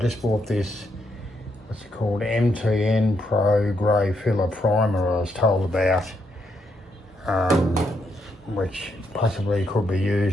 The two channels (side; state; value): both; normal; correlation 0.78